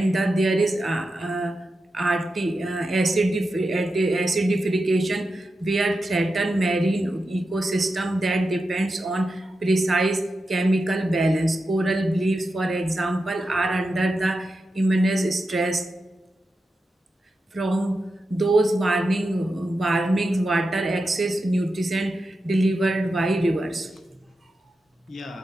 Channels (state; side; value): normal; both; correlation 0.89